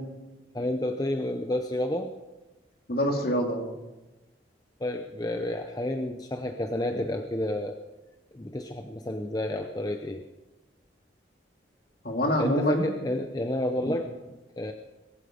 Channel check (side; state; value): both; normal; correlation 0.55